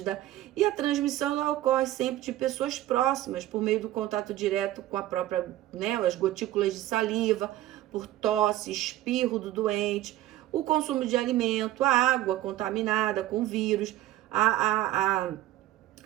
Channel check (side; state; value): left; quieter; 14.6 dB